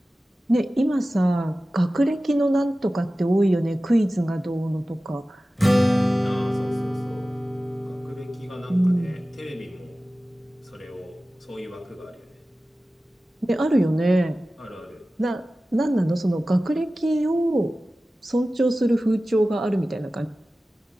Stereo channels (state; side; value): normal; both; correlation 0.96